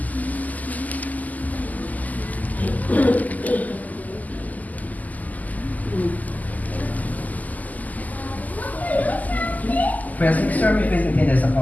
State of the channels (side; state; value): right; late; 0.079 ms